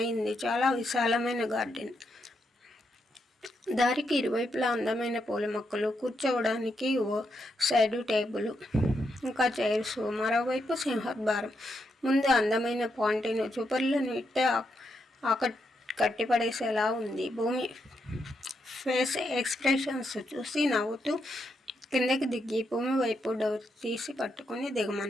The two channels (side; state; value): both; normal; correlation 0.81